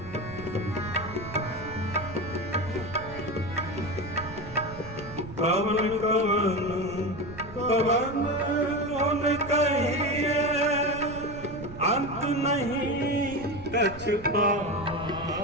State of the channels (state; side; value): noise; right; rumble, 14 dB below the sound